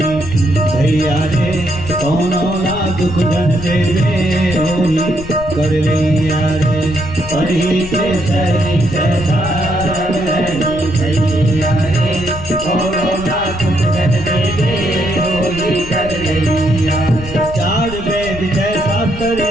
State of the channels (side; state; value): left; noise; rumble, 12 dB below the sound